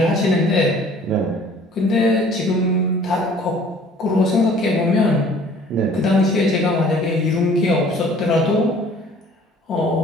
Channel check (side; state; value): both; normal; correlation 0.52